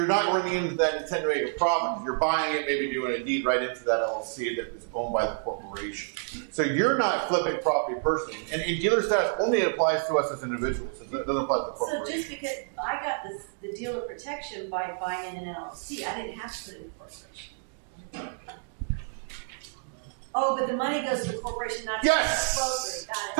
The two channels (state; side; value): silent; left; digital silence